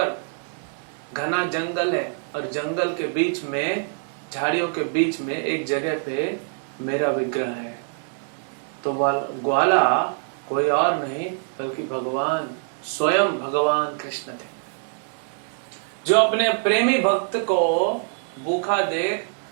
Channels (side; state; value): left; silent; 62 dB below the other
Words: घना जंगल है और जंगल के बीच में, झाड़ियों के बीच में एक जगह पे मेरा विग्रह है। तो ग्वाला कोई और नहीं बल्कि भगवान, स्वयं भगवान कृष्ण थे, जो अपने प्रेमी भक्त को भूखा देख